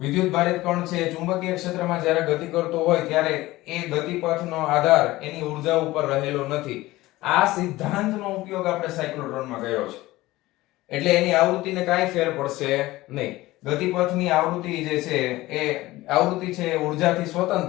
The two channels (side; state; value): right; quieter; 18.2 dB